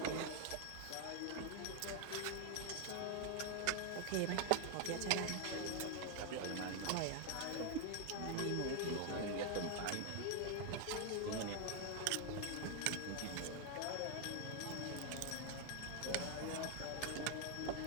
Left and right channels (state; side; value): different; both; correlation 0.00